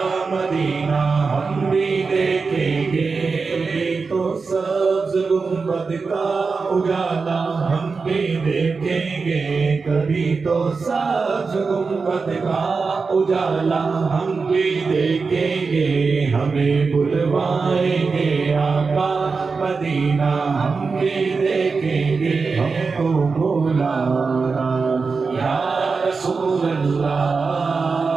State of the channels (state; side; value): quieter; left; 4.6 dB